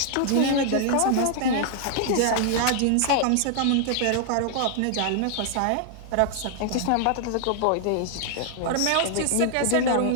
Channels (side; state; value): both; different; correlation 0.00